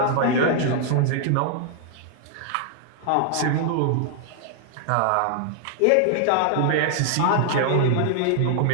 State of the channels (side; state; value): both; different; correlation 0.00